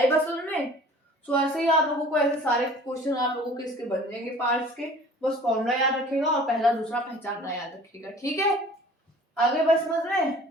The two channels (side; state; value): both; normal; correlation 0.47